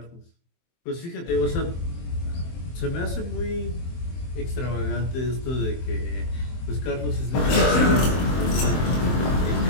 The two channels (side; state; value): right; late; 23 ms